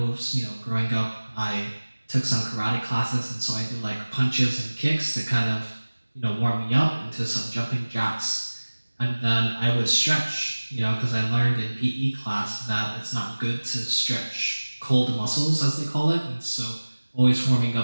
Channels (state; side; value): inverted; both; correlation -1.00